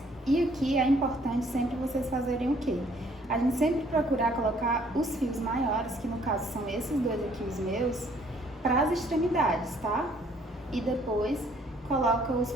E aqui é importante sempre vocês fazerem o quê? A gente sempre procurar colocar os fios maiores, que no caso são esses dois aqui, os meus, para as extremidades, tá? E depois coloca os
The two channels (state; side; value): normal; both; correlation 0.62